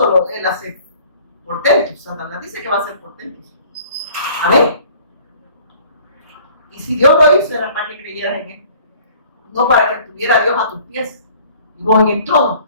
Él hace portentos, Satanás dice que va a hacer portentos. Amén. Y si Dios lo hizo, era para que creyeras en Él. No para que tuviera a Dios a tus pies. Y vos en el trono.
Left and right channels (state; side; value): inverted; both; correlation -0.53